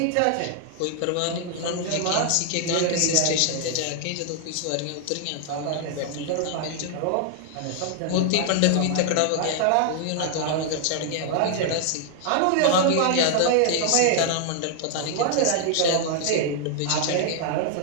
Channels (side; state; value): both; different; correlation 0.00